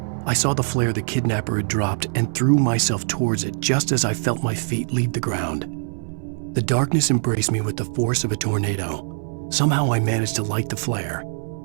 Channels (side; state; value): left; silent; 64 dB below the other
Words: I saw the flare the kidnapper had dropped and threw myself towards it just as I felt my feet leave the ground. The darkness embraced me with the force of a tornado. Somehow I managed to light the flare.